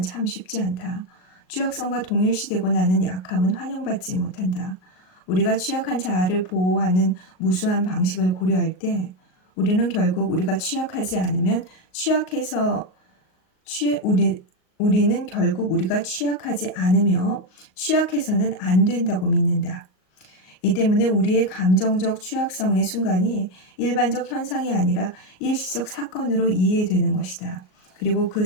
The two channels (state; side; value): late; right; 38 ms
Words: 참 쉽지 않다. 취약성과 동일시되고 나는 약함은 환영받지 못한다. 우리가 취약한 자아를 보호하는 무수한 방식을 고려할 때 우리는 결국 우리가 취약하지 않으면 우리는 결국 우리가 취약하지 않으며 취약해서는 안 된다고 믿는다. 이 때문에 우리의 감정적 취약성의 순간이 일반적 현상이 아니라 일시적 사건으로 이해되는 것이다. 그리고 그